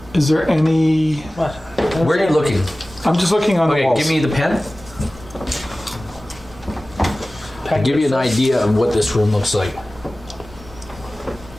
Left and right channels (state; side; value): normal; both; correlation 0.97